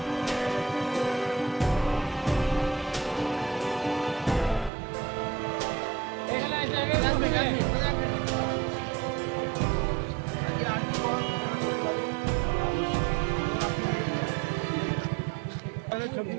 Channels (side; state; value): left; drops out; at 4.7 s